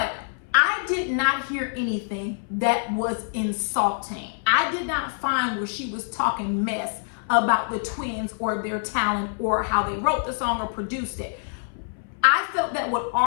I did not hear anything that was insulting. I did not find where she was talking mess about the twins or their talent or how they wrote the song or produced it. I felt that what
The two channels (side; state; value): right; silent; 59 dB below the other